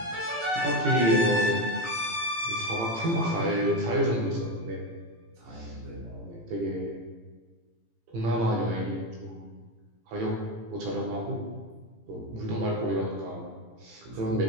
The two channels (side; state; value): left; late; 18 ms